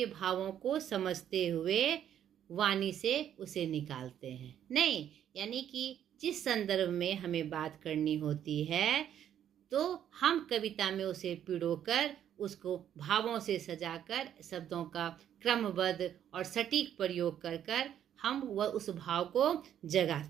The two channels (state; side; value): quieter; left; 10.1 dB